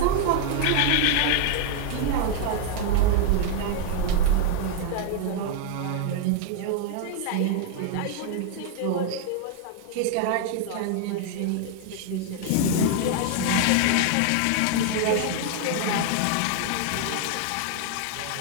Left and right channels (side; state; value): both; different; correlation 0.00